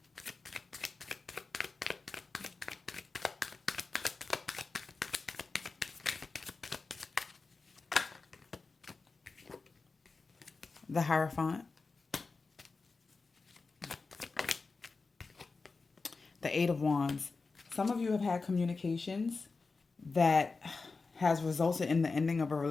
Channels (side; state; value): right; quieter; 4.1 dB